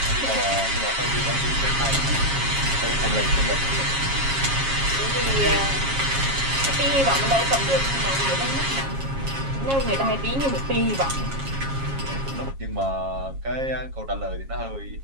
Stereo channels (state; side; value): late; left; 7.4 ms